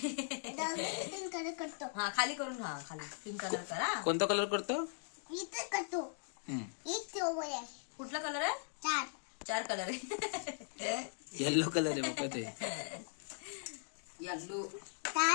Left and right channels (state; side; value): silent; right; digital silence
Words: हा खाली करून हा खाली पिंक कलर करा. कोणता कलर करतो कुठला कलर आहे. चार कलर आहे. येल्लो कलर आहे बाबा ते. येल्लो